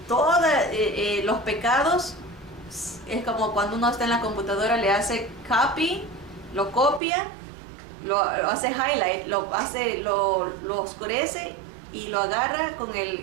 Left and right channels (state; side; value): drops out; left; at 7.0 s